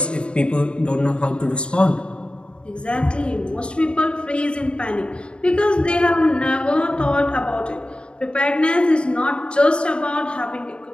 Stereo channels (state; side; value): late; right; 0.054 ms